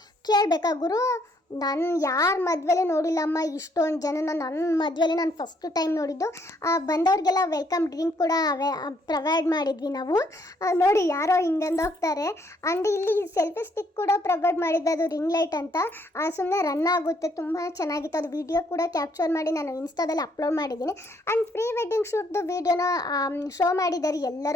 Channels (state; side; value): normal; both; correlation 0.68